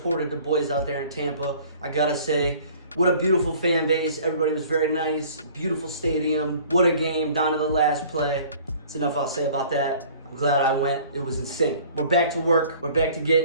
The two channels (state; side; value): inverted; both; correlation -0.50